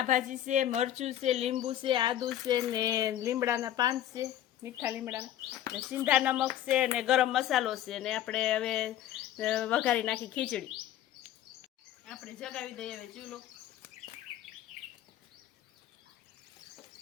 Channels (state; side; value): quieter; right; 12.0 dB